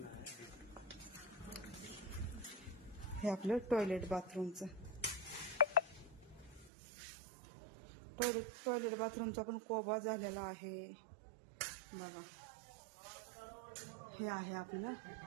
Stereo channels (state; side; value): drops out; left; at 6.7 s